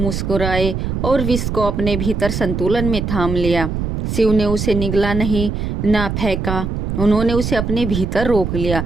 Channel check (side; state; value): right; noise; rumble, 3 dB below the sound